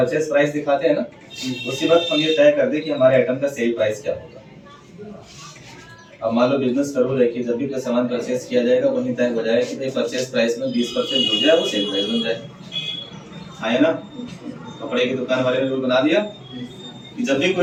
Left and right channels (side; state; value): both; identical; correlation 1.00